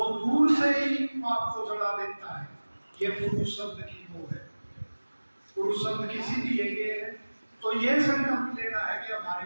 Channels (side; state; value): both; inverted; correlation -1.00